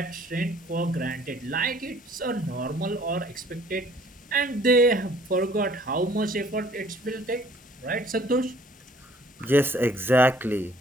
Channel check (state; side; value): normal; both; correlation 0.57